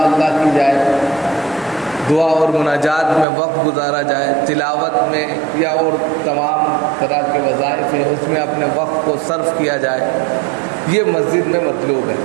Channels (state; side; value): drops out; left; at 3.2 s